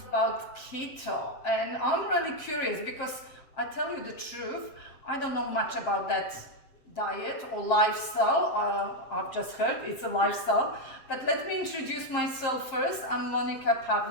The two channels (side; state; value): right; late; 7.5 ms